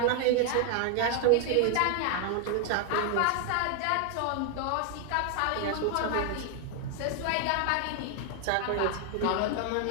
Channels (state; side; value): different; both; correlation 0.00